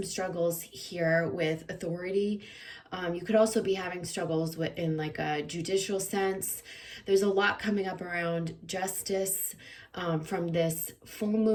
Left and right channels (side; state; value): both; identical; correlation 1.00